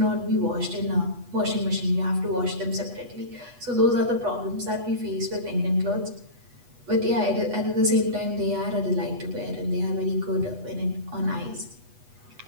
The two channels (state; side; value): late; left; 8.2 ms